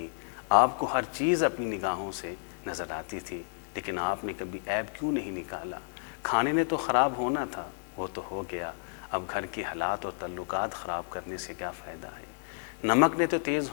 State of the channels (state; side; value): silent; right; 57 dB below the other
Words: آپ کو ہر چیز اپنی نگاہوں سے نظر آتی تھی، لیکن آپ نے کبھی عیب کیوں نہیں نکالا؟ کھانے نے تو خراب ہونا تھا، وہ تو ہو گیا، اب گھر کے حالات اور تعلقات خراب کرنے سے کیا فائدہ ہے؟ نمک نے تو تیز